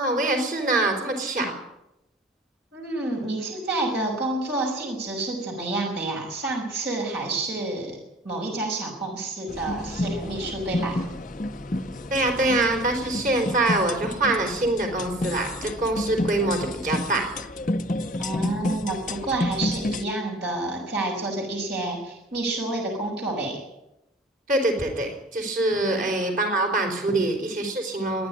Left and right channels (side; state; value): both; normal; correlation 0.46